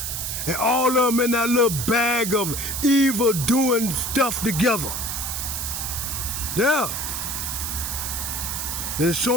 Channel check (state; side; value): noise; right; hiss, 3 dB below the sound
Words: And all of them in that little bag of evil doing stuff together. Yeah. They're